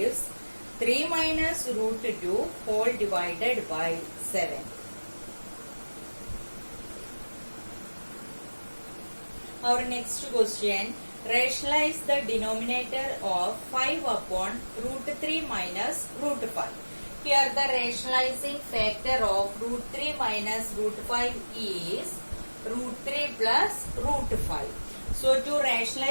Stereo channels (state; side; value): inverted; both; correlation -1.00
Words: 3 minus root 2 whole divided by 7. Our next question, rationalize the denominator of 5 upon root 3 minus root 5. Here the rationalizing factor of root 3 minus root 5 is root 3 plus root 5. So to